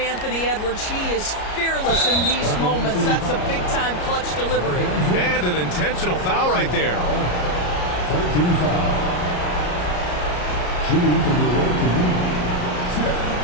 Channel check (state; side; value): late; right; 34 ms